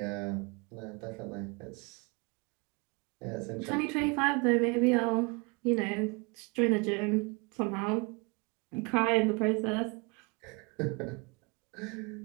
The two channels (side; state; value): left; quieter; 30.1 dB